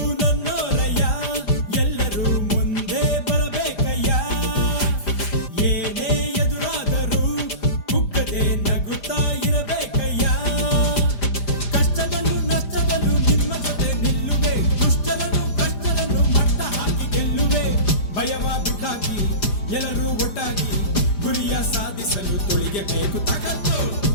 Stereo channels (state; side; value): late; right; 5.0 ms